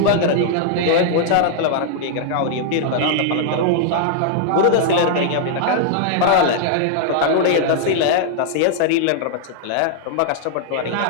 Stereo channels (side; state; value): both; different; correlation -0.01